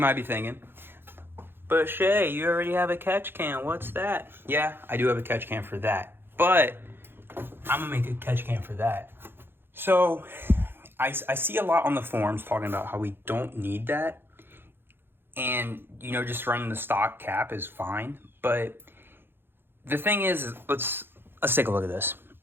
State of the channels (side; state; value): left; late; 0.10 ms